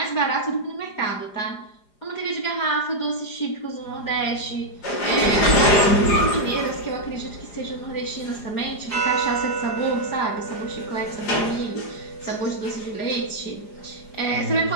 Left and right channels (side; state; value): right; late; 4.9 ms